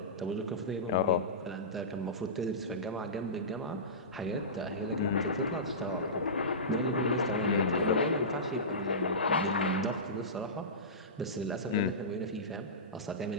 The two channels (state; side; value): normal; both; correlation -0.20